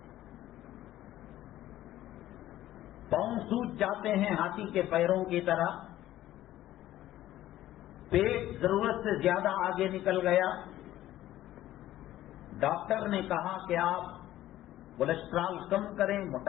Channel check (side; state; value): right; quieter; 14.1 dB